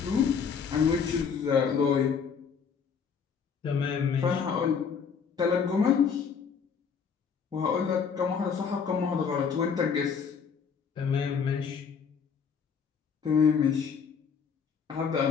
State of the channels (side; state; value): right; quieter; 6.4 dB